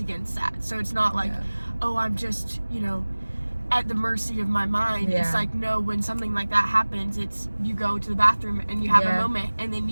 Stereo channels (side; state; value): both; inverted; correlation -1.00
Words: against that. So it's not like, oh, I'm just, you know, at the mercy of my mind. It's like, no, when something like that happens, it's, you go to the bathroom and you have a moment, and then